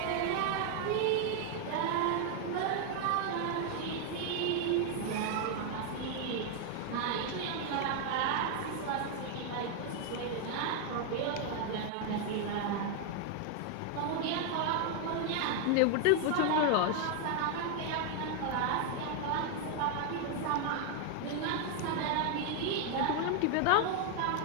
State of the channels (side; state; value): both; different; correlation 0.00